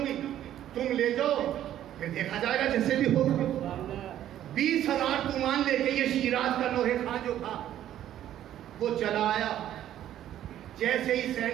گی، تم لے جاؤ پھر دیکھا جائے گا جیسے بھی ہوگا۔ 20,000 تومان لے کے یہ شیراز کا لوہے خان جو تھا وہ چلا آیا۔ جیسے ہی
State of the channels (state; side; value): quieter; left; 11.8 dB